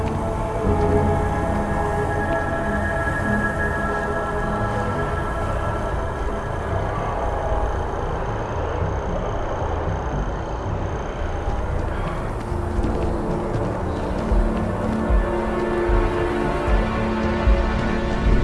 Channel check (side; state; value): both; identical; correlation 1.00